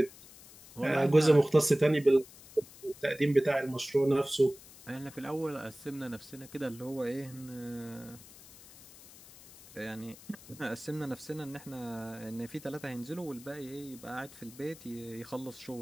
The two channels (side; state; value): left; noise; hiss, 20 dB below the sound